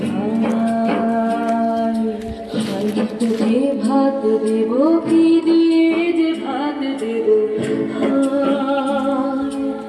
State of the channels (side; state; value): both; identical; correlation 1.00